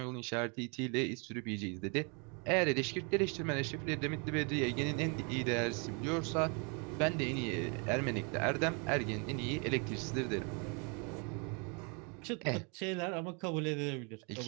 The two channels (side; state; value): left; quieter; 34.8 dB